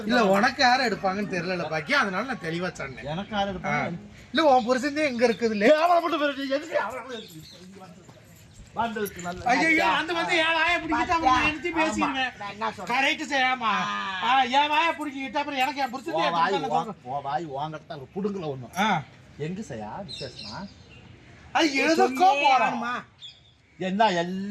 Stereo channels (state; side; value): identical; both; correlation 1.00